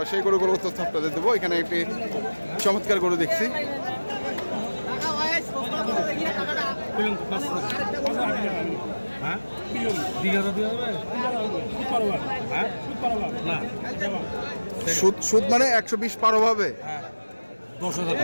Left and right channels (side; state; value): both; inverted; correlation -1.00